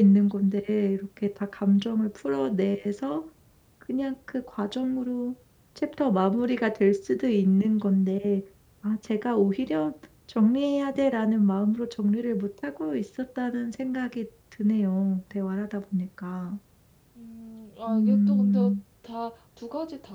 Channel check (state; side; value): identical; both; correlation 1.00